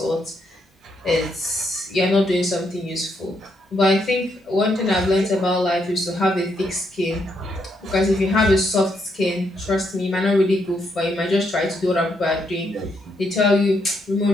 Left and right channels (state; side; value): normal; both; correlation 0.77